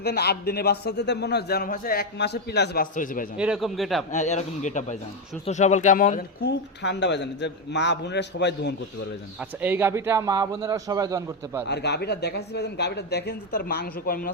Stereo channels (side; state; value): both; normal; correlation 0.07